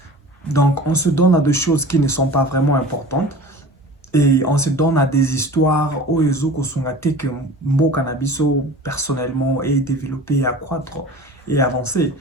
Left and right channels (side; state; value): both; normal; correlation 0.39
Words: Donc, on se donne à des choses qui ne sont pas vraiment importantes. Et on se donne à des histoires où les autres que Mboka Nabiso personnellement est développé, accroître et avancer.